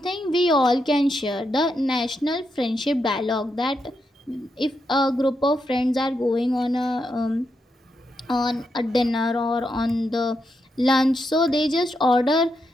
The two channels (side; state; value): both; normal; correlation 0.83